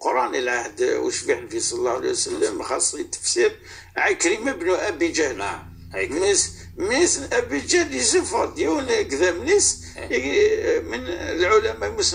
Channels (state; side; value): identical; both; correlation 1.00